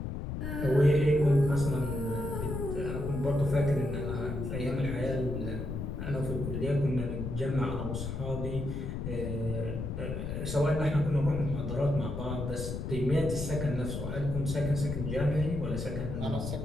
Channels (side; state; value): left; noise; rumble, 4 dB below the sound